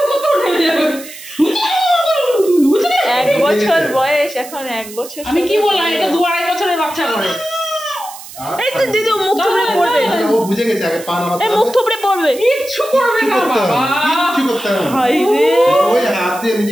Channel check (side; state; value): right; noise; hiss, 15 dB below the sound